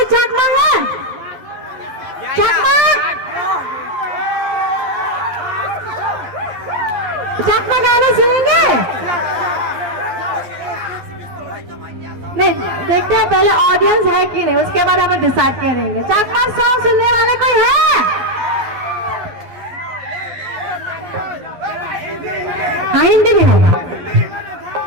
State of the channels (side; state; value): left; late; 11 ms